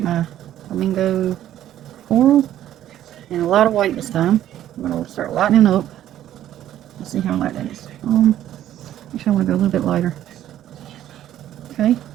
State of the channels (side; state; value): left; quieter; 12.1 dB